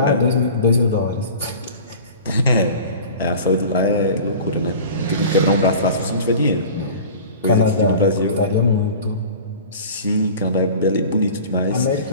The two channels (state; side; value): inverted; both; correlation -0.40